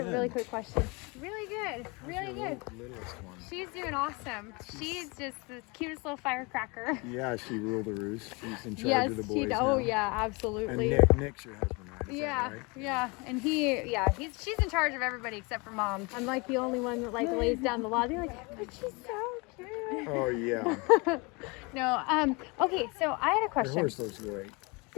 really quick question. Really good, really good. Littlest one. She's doing awesome. She's just the cutest little firecracker. Yeah, she ruled the roost. She's in charge Yes, of the boys she. now. Oh yeah, And absolutely. Nick's your husband, right? Is Yeah, that right? yeah, and she's in charge of everybody except for mom. I'm like the only one that like lays down the law. They're like, but she's so cute. Oh yeah. No, okay, so I had a Your question. horse looks great.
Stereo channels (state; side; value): quieter; right; 28.3 dB